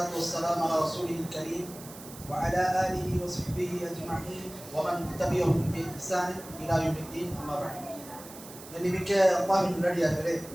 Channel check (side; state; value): right; noise; hiss, 16 dB below the sound